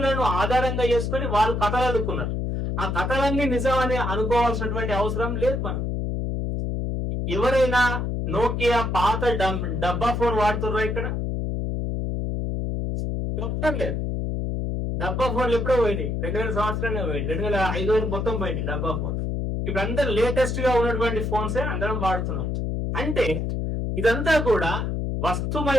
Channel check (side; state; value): left; noise; hum, 1 dB below the sound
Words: ఆధారంగా చేసుకొని వాళ్ళు కథలు అల్లుకున్నారు. ఆ కథలన్నీ నిజం అని అనుకోవాల్సినటువంటి అవసరం లేదు. మనం ఎవరైనా నోకియా పాత డబ్బా ఫోన్ వాడుతున్నారా ఇక్కడ? చెప్పడం లేదు. డబ్బా ఫోన్లు ఎప్పుడో పోయినాయి, 2000 సంవత్సరాలే పోయింది, 2005 మొత్తం పోయింది డబ్బా ఫోన్. ఇప్పుడు అందరూ లేటెస్ట్ గా ఉన్నటువంటి ఫోన్సే అందరం వాడుతున్నాం. అంటే ఇదంతా కూడా